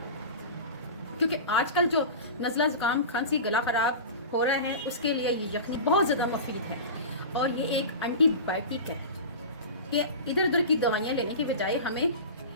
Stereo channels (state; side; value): inverted; both; correlation -0.30